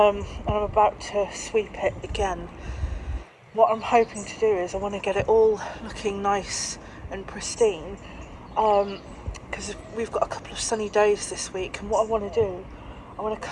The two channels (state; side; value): identical; both; correlation 1.00